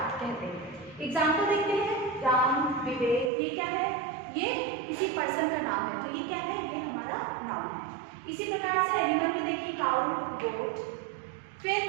कहते हैं। एग्जाम्पल देखते हैं, राम, विवेक, ये क्या है? ये किसी पर्सन का नाम है, तो ये क्या है? ये हमारा नाउन है। इसी प्रकार से एनिमल में देखिए, काउ, गोट। फिर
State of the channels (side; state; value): left; drops out; at 3.3 s